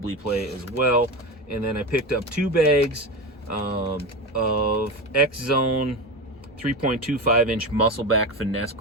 play as well. And then I picked up 2 bags of X-Zone 3.25-inch muscleback finesse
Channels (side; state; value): both; normal; correlation 0.21